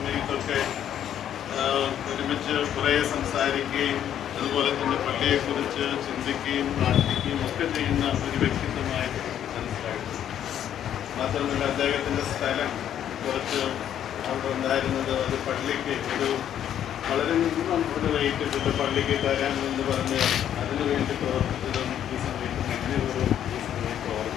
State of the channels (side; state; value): right; quieter; 10.2 dB